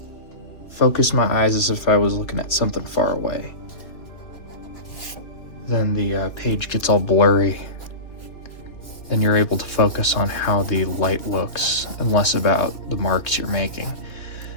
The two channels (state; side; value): late; right; 2.9 ms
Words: focus my eyes as if I was looking at something far away. Then the page gets all blurry. Then you're able to focus on how the light looks and less about the marks you're making.